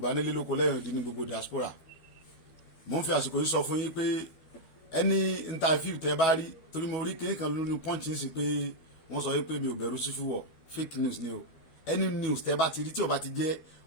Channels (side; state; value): right; late; 12 ms